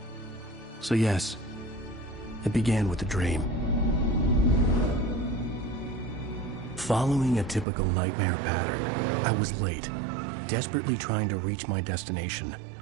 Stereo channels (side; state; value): left; drops out; at 7.7 s